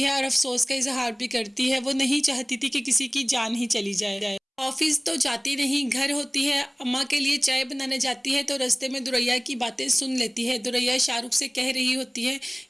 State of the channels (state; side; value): identical; both; correlation 1.00